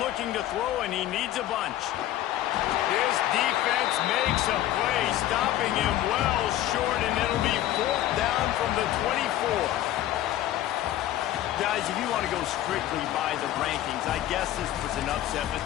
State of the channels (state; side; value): quieter; right; 13.4 dB